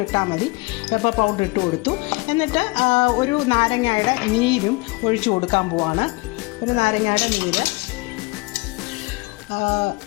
ഇട്ടാൽ മതി. പെപ്പർ പൗഡർ ഇട്ട് കൊടുത്തു. എന്നിട്ട് ഒരു നാരങ്ങയുടെ നീരും ഒഴിച്ചു കൊടുക്കാൻ പോവാണ്. ഒരു നാരങ്ങയുടെ നീര്,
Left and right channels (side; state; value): right; quieter; 25.8 dB